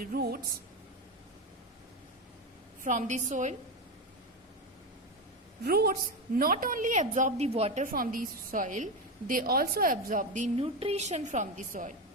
roots from the soil. Roots not only absorb the water from the soil, they also absorb the nutrition from the soil,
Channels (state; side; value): normal; both; correlation 0.14